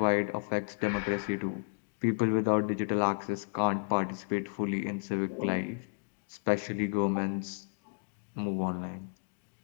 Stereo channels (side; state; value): right; silent; digital silence